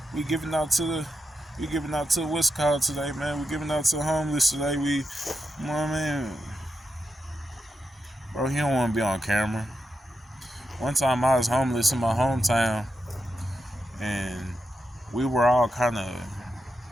giving out to what's called today, man. We giving out to the homeless today. You know what I mean? Bro, he don't want to be on camera. One time I was homeless in my hometown, and we were all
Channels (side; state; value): both; normal; correlation 0.86